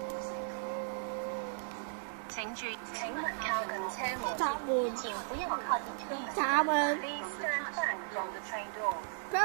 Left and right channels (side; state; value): left; silent; digital silence